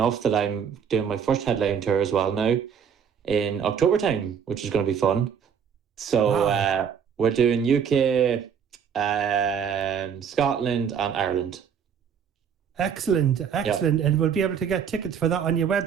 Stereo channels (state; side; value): quieter; left; 7.5 dB